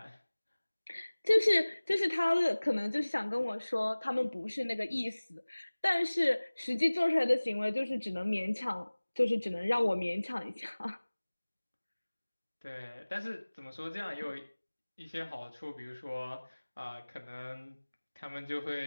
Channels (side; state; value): both; inverted; correlation -1.00